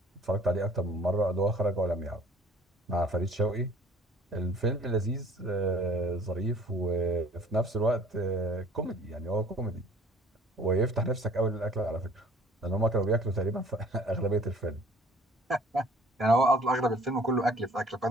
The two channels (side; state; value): both; normal; correlation 0.54